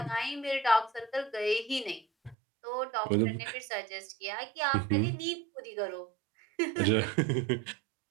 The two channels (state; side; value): drops out; left; at 2.4 s